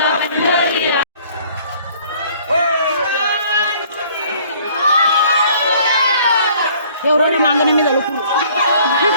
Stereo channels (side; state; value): both; inverted; correlation -0.56